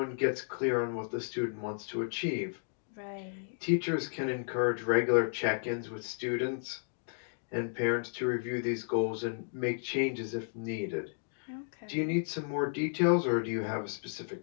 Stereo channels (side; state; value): right; silent; digital silence